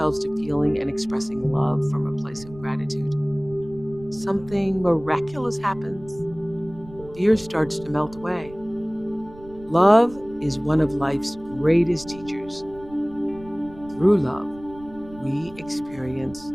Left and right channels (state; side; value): noise; right; rumble, 19 dB below the sound